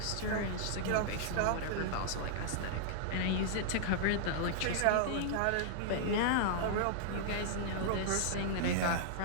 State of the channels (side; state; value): both; different; correlation -0.01